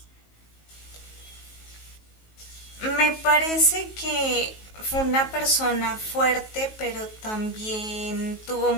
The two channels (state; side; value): late; right; 19 ms